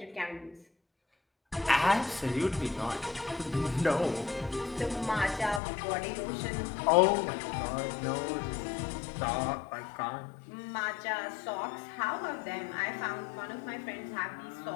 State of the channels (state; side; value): drops out; right; at 5.6 s